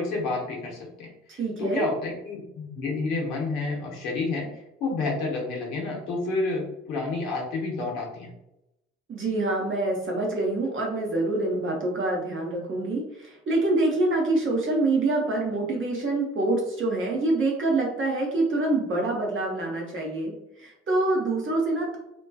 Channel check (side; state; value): both; normal; correlation 0.52